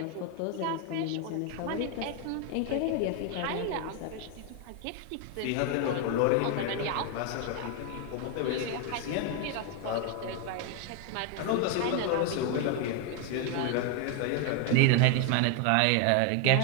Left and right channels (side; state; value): both; different; correlation 0.01